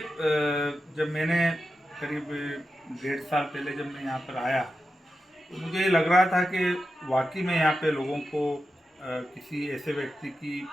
जब मैंने करीब 1.5 साल पहले जब मैं यहाँ पर आया तो मुझे ये लग रहा था कि वाकई में यहाँ पे लोगों को किसी ऐसे व्यक्ति की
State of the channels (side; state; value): both; normal; correlation 0.90